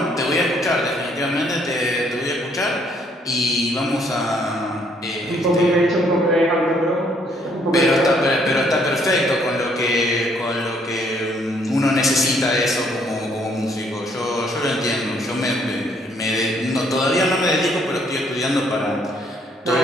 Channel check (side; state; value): both; normal; correlation 0.67